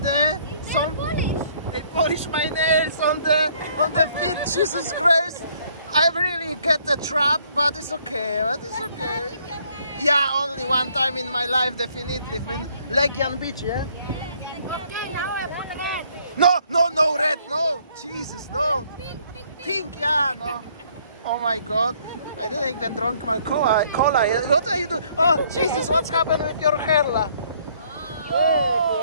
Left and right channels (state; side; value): inverted; both; correlation -0.63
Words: there. They polish my nails on the feet. Jesus Christ! I really get the trap, but it's okay. Yeah, only one time in my life, definitely in Legian Beach. Yeah. No red, no. Jesus, no. Pink, yeah, no. Oh my God. I didn't even drink my cola. What are you doing? Oh, Jesus, what's happened with your hair? Oh,